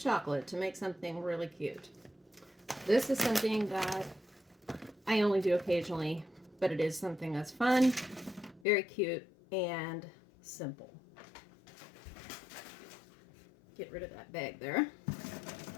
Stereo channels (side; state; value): right; drops out; at 8.7 s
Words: to make something really cute. This is something that I only do occasionally, but it is something that's fun, very cute, and simple. Get rid of that bag there.